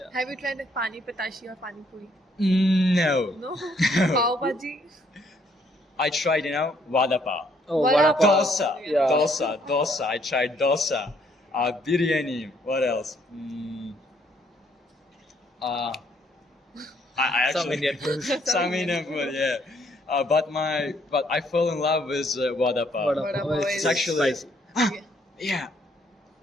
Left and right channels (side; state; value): both; normal; correlation 0.68